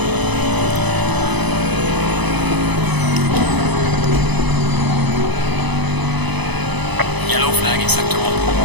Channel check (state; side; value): late; left; 0.99 ms